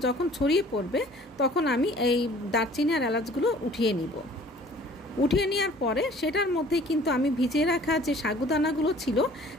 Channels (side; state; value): both; normal; correlation 0.52